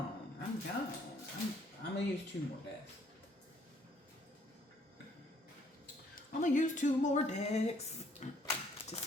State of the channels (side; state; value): both; normal; correlation 0.64